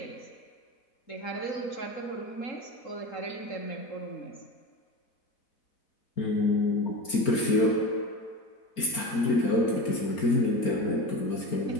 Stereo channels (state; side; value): late; right; 4.4 ms